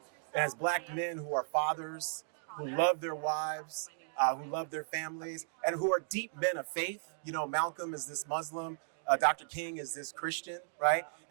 as black men who are fathers, who love their wives, who love their families, and who are deep men of faith. You know, Malcolm is this Muslim, Dr. King is this Christian, right?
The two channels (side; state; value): left; silent; digital silence